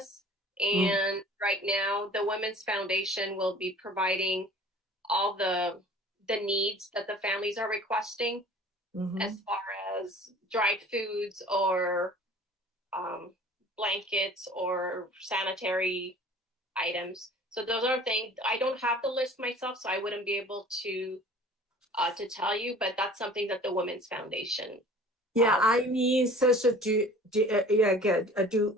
And right now, the Women's Foundation will be providing all the needs that the families are requesting, as far as dried foods or blankets or sanitary items. So those are things. I don't have the list myself, so I wouldn't be able to tell you, but that's something that the Women's Foundation. Yeah, I mean, so do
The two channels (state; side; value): normal; both; correlation 0.46